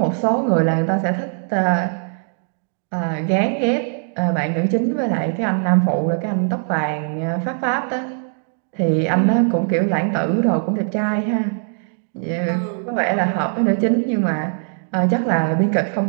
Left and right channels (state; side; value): silent; left; 60 dB below the other